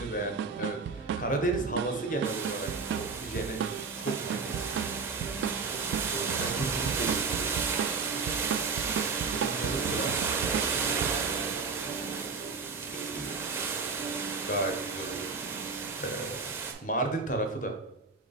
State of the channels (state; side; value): quieter; left; 4.6 dB